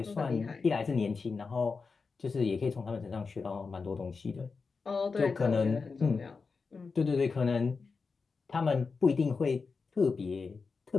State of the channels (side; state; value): right; quieter; 4.7 dB